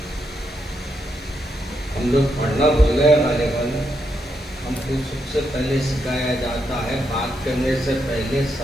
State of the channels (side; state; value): both; normal; correlation 0.80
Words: ہم لوگ پڑھنا بھول گئے غالباً. ہم کو سب سے پہلے سکھایا جاتا ہے بات کرنے سے پہلے